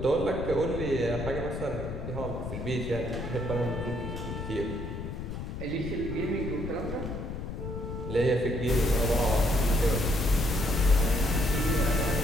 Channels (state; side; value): noise; left; rumble, 6 dB below the sound